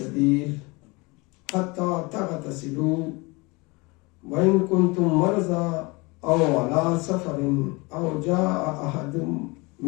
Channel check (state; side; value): quieter; right; 26.1 dB